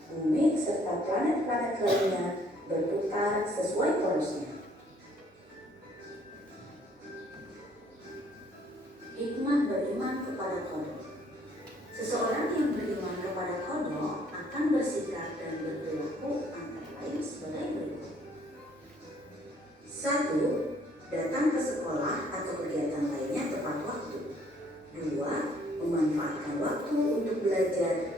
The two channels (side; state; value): both; normal; correlation 0.62